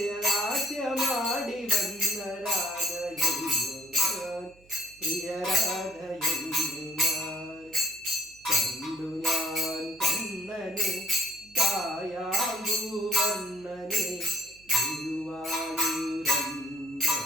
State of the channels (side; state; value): right; noise; hum, 28 dB below the sound